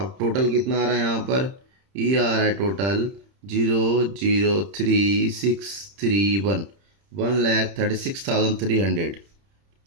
टोटल कितना आ रहा है यहाँ पर, ये आ रहा है टोटल 0,03631, 1,36,300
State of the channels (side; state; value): left; late; 31 ms